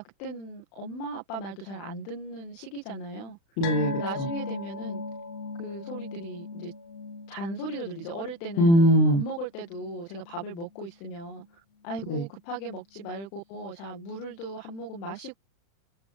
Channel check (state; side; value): late; right; 36 ms